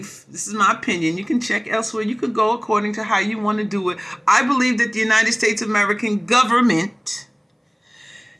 this is my opinion, you can check elsewhere, you could go according to how you want to do it. I believe that the United States American government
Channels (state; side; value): identical; both; correlation 1.00